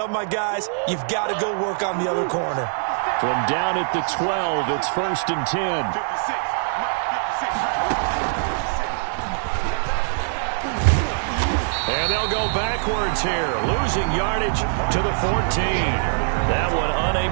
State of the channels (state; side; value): silent; left; digital silence